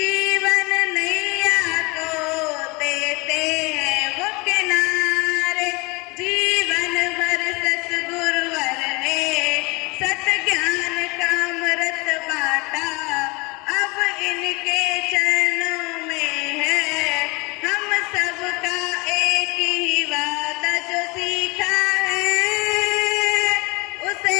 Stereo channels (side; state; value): right; quieter; 26.3 dB